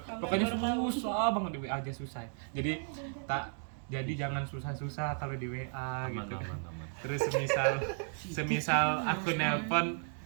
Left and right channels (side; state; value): left; silent; 55 dB below the other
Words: Pokoknya susah banget di WA aja susah. Jadi jangan susah-susah kalau di WA Aman, gitu. aman. Terus semisal aku